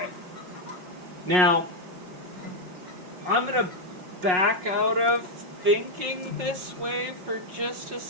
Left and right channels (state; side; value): late; left; 5.5 ms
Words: Now, I'm going to back out of thinking this way for just a